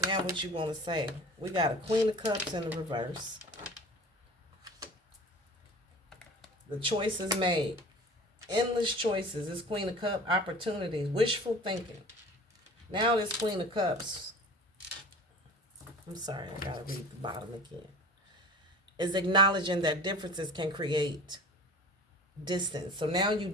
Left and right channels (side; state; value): both; normal; correlation 0.40